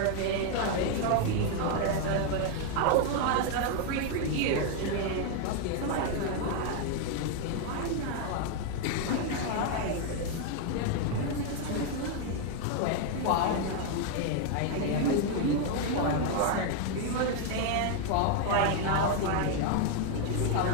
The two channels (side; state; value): both; different; correlation 0.01